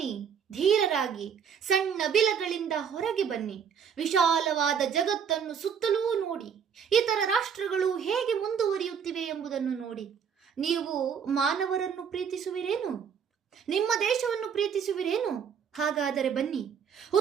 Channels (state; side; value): quieter; left; 7.3 dB